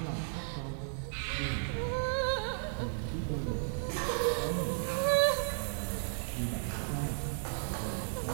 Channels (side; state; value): left; silent; digital silence